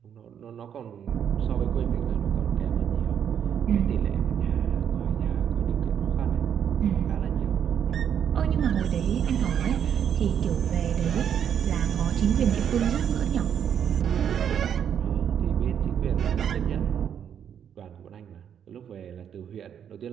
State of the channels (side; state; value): left; quieter; 8.7 dB